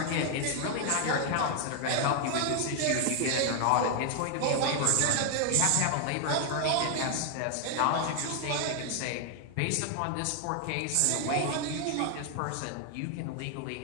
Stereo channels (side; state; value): both; different; correlation 0.00